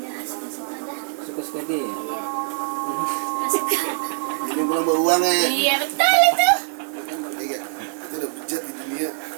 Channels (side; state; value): left; silent; digital silence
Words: Ya suka-suka dah. Suka-suka dia ya? Ini pulang bawa uang ya. Iya betul itu. Iya, itu udah bejat di dunia.